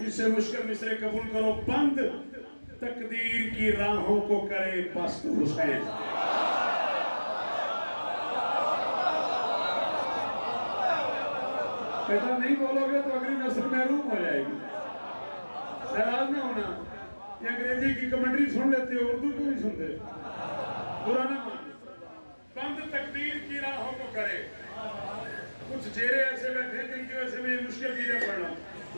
سے مشکل مصرے قبول کرو بند تقدیر کی راہوں کو کرے پست حسین کہتا نہیں بولو گے تو اگلی نسل محروم ہو جائے گی. ناراض نہ ہونا. یہ انگریزی کی کمنٹری سن لیتے ہو, اردو کیوں نہیں سنتے؟ برا نہ مان. بند تقدیر کی راہوں کو کرے. کچھ چہرے ایسے بیٹھے ہیں جن کی وجہ سے میں یہ مشکل چیزیں پڑھ رہا ہوں,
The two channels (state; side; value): inverted; both; correlation -1.00